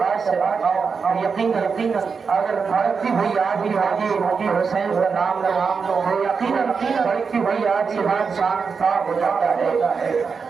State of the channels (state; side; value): quieter; left; 5.4 dB